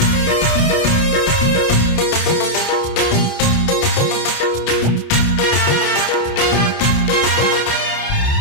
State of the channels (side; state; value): right; late; 28 ms